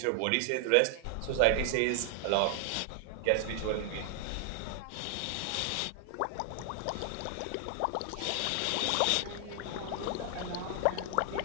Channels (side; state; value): both; different; correlation 0.00